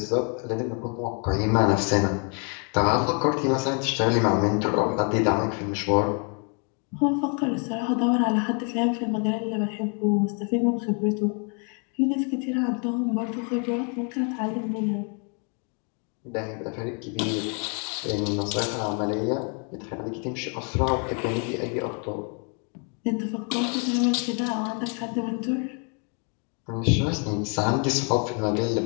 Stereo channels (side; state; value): right; quieter; 38.4 dB